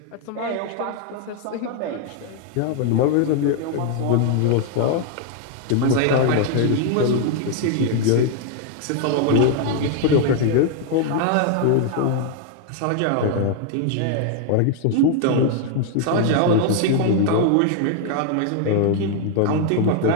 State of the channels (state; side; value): different; both; correlation 0.00